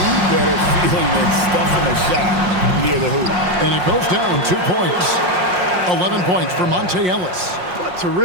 better feeling than stuffing a shot near the hoop? And it goes down 2 points. 11 points for Monte Ellis. What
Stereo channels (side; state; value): left; late; 5.6 ms